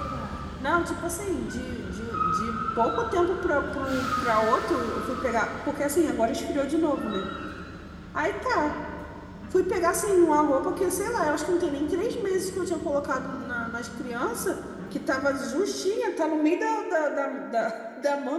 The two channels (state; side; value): identical; both; correlation 1.00